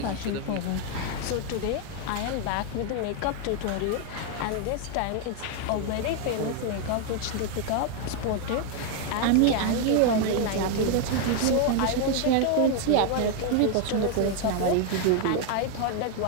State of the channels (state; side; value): different; both; correlation 0.01